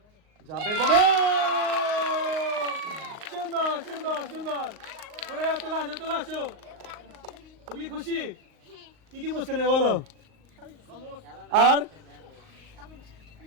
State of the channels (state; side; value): late; left; 38 ms